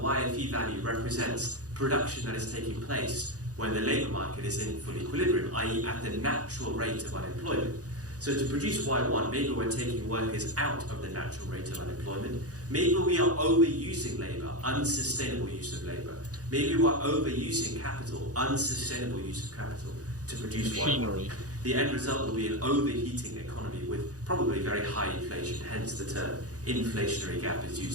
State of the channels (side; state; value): left; late; 0.67 ms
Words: value represents production that is taking place when the labour market is in full equilibrium, i.e. at the natural rate of unemployment. So to produce Y1, maybe we're taking workers out of the natural rate of unemployment. Maybe we are overusing labour, unsustainable use of labour. Maybe we're overusing capital, unsustainable use of capital, to produce machinery. Y1. The end result will be an overheating economy with probably very high inflation, hence the term inflationary gap is